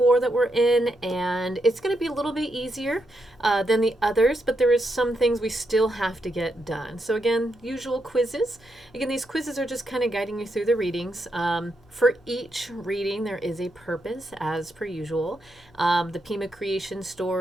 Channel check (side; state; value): both; normal; correlation 0.82